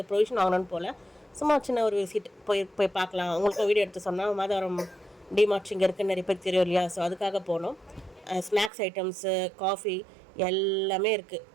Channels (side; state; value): left; drops out; at 8.7 s